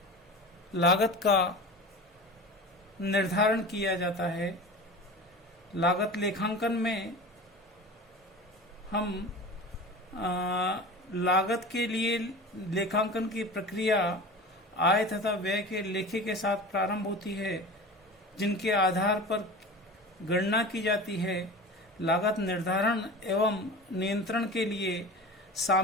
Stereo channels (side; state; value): both; normal; correlation 0.34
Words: लागत का निर्धारण किया जाता है। लागत लेखांकन में हम लागत के लिए लेखांकन की प्रक्रिया आय तथा व्यय के लेखे के साथ प्रारंभ होती है, जिनके आधार पर गणना की जाती है। लागत निर्धारण एवं नियंत्रण के लिए